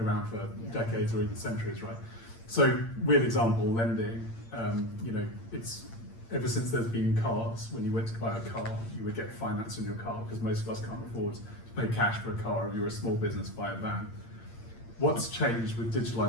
for decades or even centuries, right? So, real example, lending. It's ever since there's been cars. When you went to buy a car, you would get finance on your car because most of us can't afford to pay cash for a car. If you're a small business, buy a van. What's changed with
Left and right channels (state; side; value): late; right; 8.7 ms